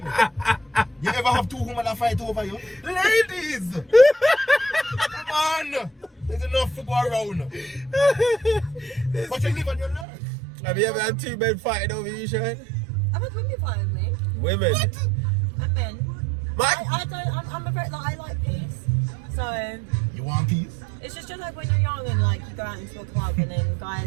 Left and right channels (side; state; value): left; drops out; at 10.1 s